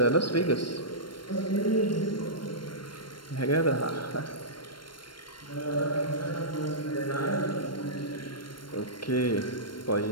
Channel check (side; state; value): right; late; 0.72 ms